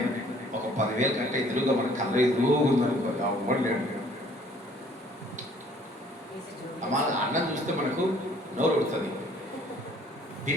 ఒక 10,000 కంటే ఎదురుగా మన కళ్ళ ఎదురుగా ఉందనుకోండి, అవ్వలేడు. మన అన్నం చూస్తే మనకు నోరు ఉడుతుంది,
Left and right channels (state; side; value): normal; both; correlation 0.58